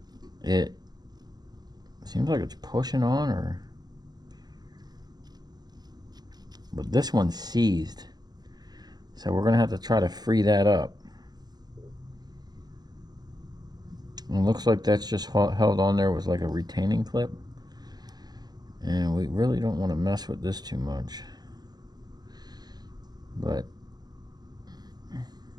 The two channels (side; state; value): left; late; 0.19 ms